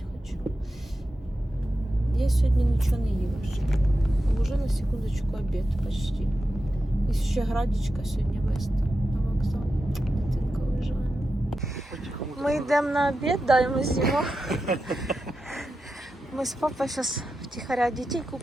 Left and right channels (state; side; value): normal; both; correlation 0.90